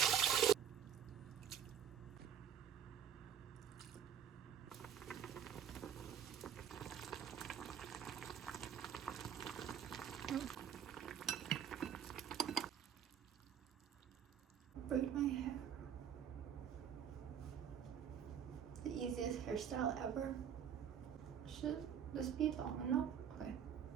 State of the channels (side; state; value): left; quieter; 8.6 dB